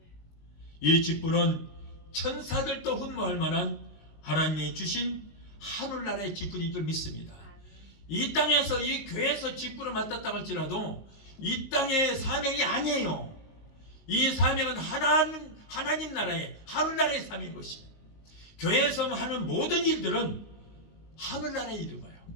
이 직분은 천사들도 흠모할 만한 하나님이 주신 하늘나라의 직분인 줄 믿습니다. 이 땅에서 이 교회에서 직분을 맡았다 할지라도 이 땅의 사명이 아니에요. 이 사명은 하나님 나라의 하늘나라의 사명인 것입니다. 교회에서 하는 모든 일들은 하늘나라의 일인 거예요.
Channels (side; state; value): right; late; 19 ms